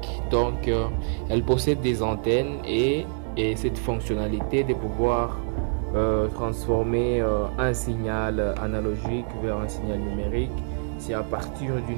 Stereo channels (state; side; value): silent; left; digital silence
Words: Elle possède des antennes et cette fonctionnalité de pouvoir transformer un signal analogique vers un signal numérique, c'est à partir